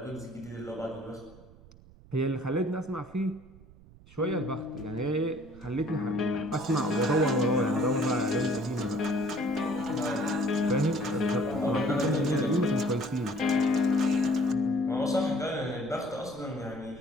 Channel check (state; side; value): noise; right; rumble, 23 dB below the sound